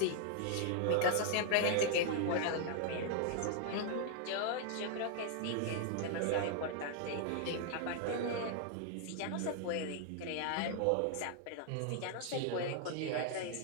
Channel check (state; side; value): different; both; correlation 0.00